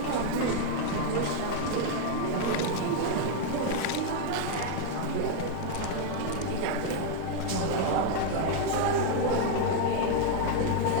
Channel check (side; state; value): both; different; correlation 0.00